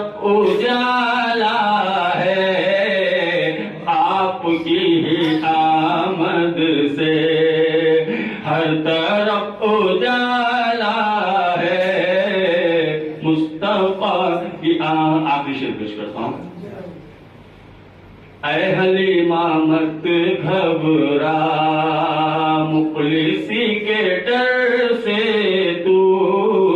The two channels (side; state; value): both; identical; correlation 1.00